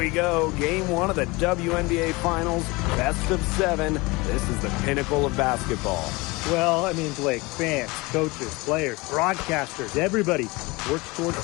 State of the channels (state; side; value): quieter; right; 24.1 dB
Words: go, game one of the WNBA Finals, best of 7. This is the pinnacle of basketball. Well, I mean, Blake, fans, coaches, players, broadcasters, everybody works towards